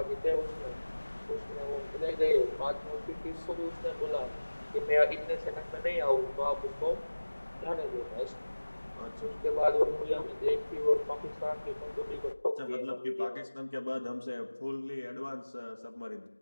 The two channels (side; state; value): both; inverted; correlation -1.00